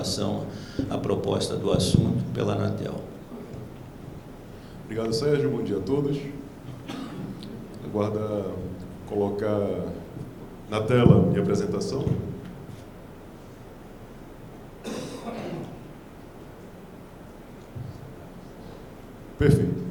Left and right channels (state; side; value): identical; both; correlation 1.00